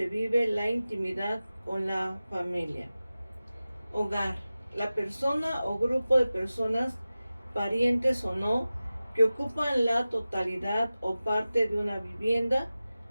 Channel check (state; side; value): inverted; both; correlation -0.96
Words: vive la intimidad con la familia. Hogar, la persona o grupo de personas, parientes o no, que ocupan la totalidad o parte de una vivienda